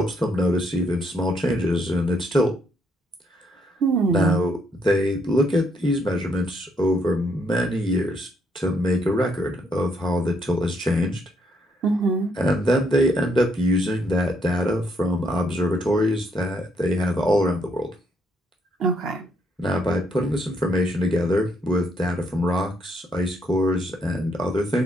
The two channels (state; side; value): normal; both; correlation 0.73